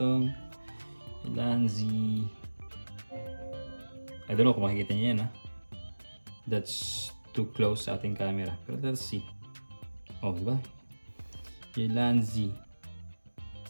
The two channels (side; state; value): both; inverted; correlation -1.00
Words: Lanzi. I don't know kung makikita niyo yan, That's too close sa ating camera. Pero let's see. Oh, di ba? Lanzi